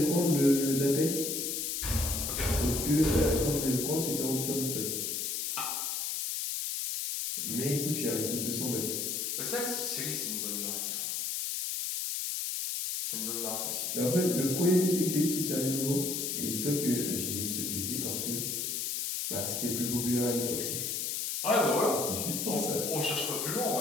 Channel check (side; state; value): left; noise; hiss, 1 dB below the sound